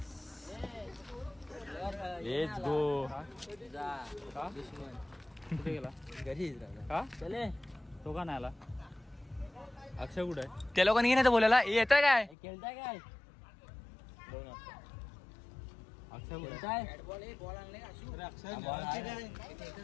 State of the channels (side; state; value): right; drops out; at 12.4 s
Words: लेट्स गो घरी का चले तो का नाही आला अक्षय कुठे आहे त्या लोकांनी नाही बोलायला येत आहे काय खेळताय काय